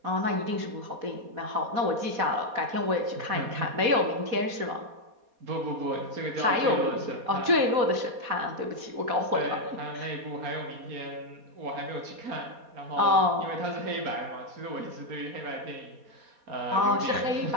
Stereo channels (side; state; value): left; late; 4.1 ms